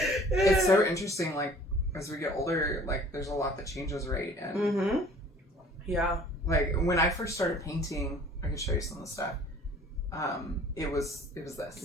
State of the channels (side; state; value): both; normal; correlation 0.51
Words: It's so interesting. Like as we get older, like there's a lot that changes, right? And Mm-hmm. Yeah. like when I first started painting, I could show you some of the stuff. It was this.